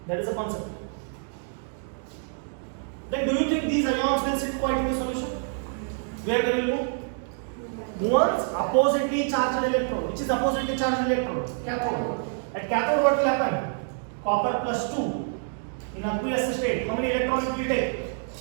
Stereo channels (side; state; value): left; silent; 60 dB below the other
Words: That is a concept. Then do you think these ions will sit quiet in the solution? Where they will move? Moves oppositely charged electrode. Which is oppositely charged electrode? Cathode. At cathode what will happen? Copper plus 2 in aqueous state. How many electrons it will take?